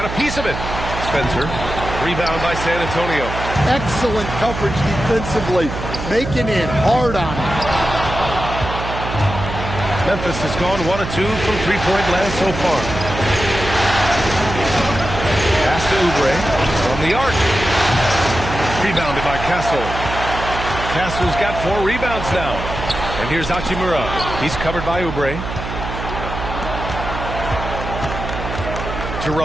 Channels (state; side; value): noise; right; hum, 7 dB below the sound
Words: a piece of it. Spencer. Rebound by San Antonio. Excellent coverage defensively, making it hard on him. Memphis has gone 1 of 2 from 3-point land so far. Pass to Oubre from the arc. Rebounded by Castle. Castle's got 4 rebounds now. And here's Hachimura. He's covered by Oubre.